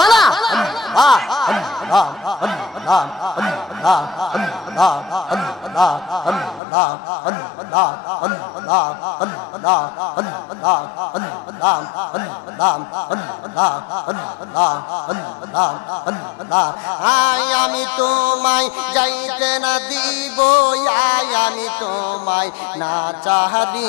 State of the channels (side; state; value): right; drops out; at 6.6 s